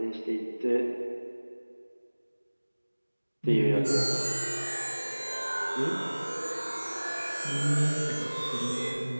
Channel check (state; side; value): inverted; both; correlation -1.00